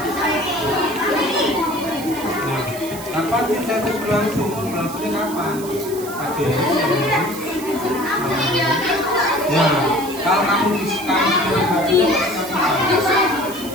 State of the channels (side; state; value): right; noise; hiss, 13 dB below the sound